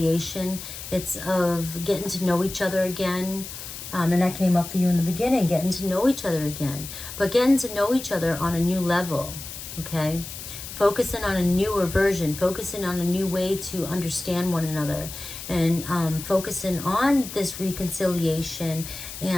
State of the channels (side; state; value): left; noise; hiss, 10 dB below the sound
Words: It's of getting to know each other again. And that came up for you in the beginning, getting to know each other again. But getting to know each other on a new level, okay? Focusing on a newer version, focusing on a new way to understand one another, and focusing on this reconciliation,